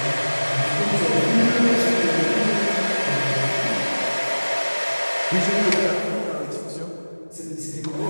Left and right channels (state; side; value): inverted; both; correlation -1.00